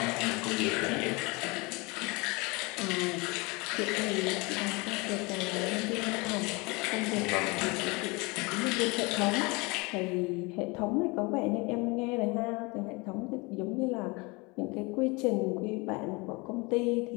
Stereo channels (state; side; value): quieter; right; 26.7 dB